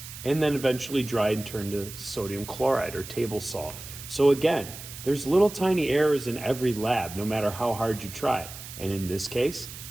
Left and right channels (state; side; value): noise; right; hiss, 13 dB below the sound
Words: and then eventually dried and turned to sodium chloride or table salt. So again, there's little tiny errors in every lab, no matter how hard you try. And in this case,